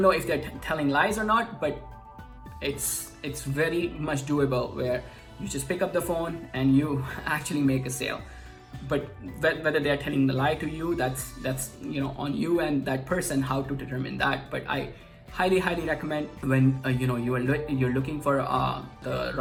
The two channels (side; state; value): both; identical; correlation 1.00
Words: know if they're telling lies or not, but it's very much doable, where you just pick up the phone and you actually make a sale. But whether they're telling the lie to you, that's on you and that person how to determine that. But I highly recommend when you're looking for the